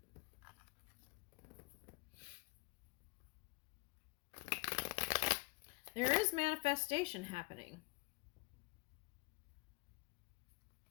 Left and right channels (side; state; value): right; quieter; 24.4 dB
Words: There is manifestation happening.